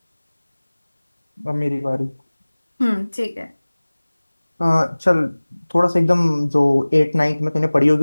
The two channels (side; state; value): both; inverted; correlation -1.00